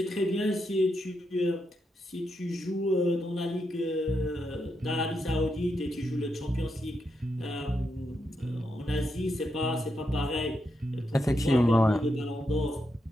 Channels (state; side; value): normal; both; correlation 0.83